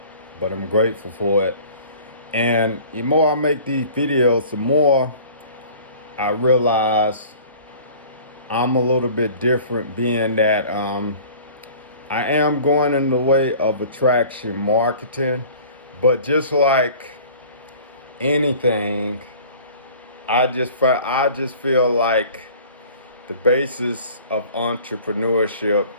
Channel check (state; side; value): inverted; both; correlation -0.47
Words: but I'm grateful for it. And the more I make these videos, the more I realize I'm a little bit different, being that I am going in the way of attraction marketing, but just like anything, I just feel like the basis of entrepreneurship